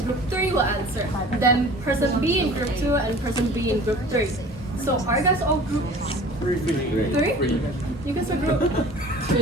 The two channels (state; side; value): normal; both; correlation 0.44